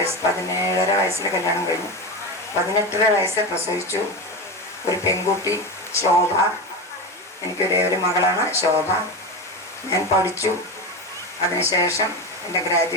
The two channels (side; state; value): both; normal; correlation 0.20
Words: വയസ്സിൽ കല്യാണം കഴിഞ്ഞു. 18 വയസ്സിൽ പ്രസവിച്ചു. ഒരു പെൺകുട്ടി ശോഭ. എനിക്കൊരേ ഒരു മകളാണ് ശോഭ. ഞാൻ പഠിച്ചു. അതിനുശേഷം എൻ്റെ